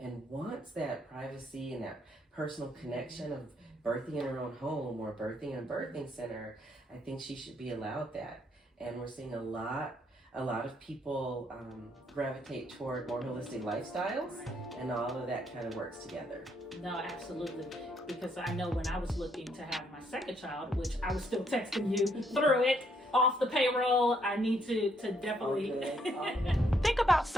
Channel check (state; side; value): normal; both; correlation 0.71